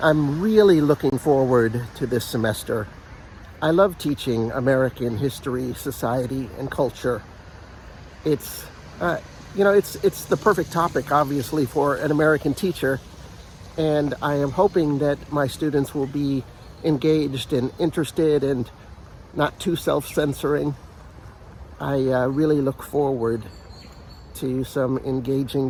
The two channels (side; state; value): both; identical; correlation 1.00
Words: I'm really looking forward to this semester. I love teaching American history, society, and culture. It's the perfect topic, obviously, for an American teacher, and I am hoping that my students will be engaged and interested and not too self-censoring. I really look forward to some engaging